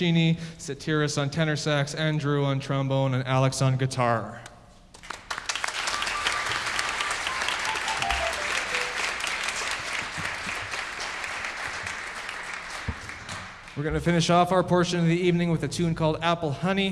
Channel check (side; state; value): both; identical; correlation 1.00